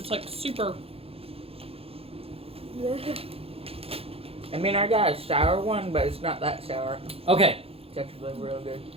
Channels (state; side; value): late; left; 0.28 ms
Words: like super. I mean, I got a sour one, but it's not that sour. Okay. It's actually real good.